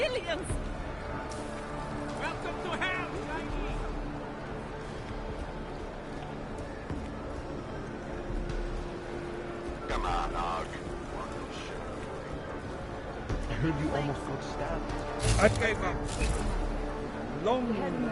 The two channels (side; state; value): both; identical; correlation 1.00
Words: Welcome to hell, Chinese. Come on, Og. I heard you almost got stabbed. I gave up. Long war.